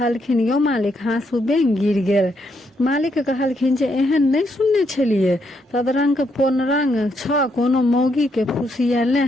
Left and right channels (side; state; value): both; normal; correlation 0.76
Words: यौ मालिक हाँसू बेंग गिर गेल। मालिक कहलखिन जे एहन नहीं सुनने छलिए, तदरंग पोनरंग छ कोनो मौगी के फुसियेले